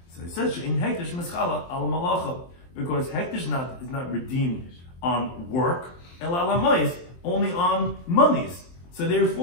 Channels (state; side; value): late; right; 23 ms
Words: So it says in hektish mischala al malacha, because hektish is not redeemed on work, el alamayis, only on monies. So